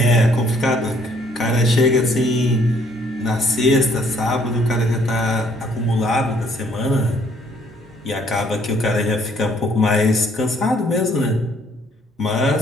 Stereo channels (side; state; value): both; normal; correlation 0.64